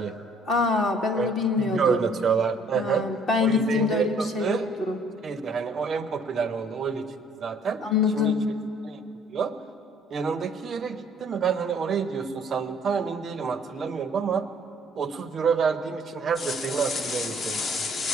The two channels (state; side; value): normal; both; correlation 0.59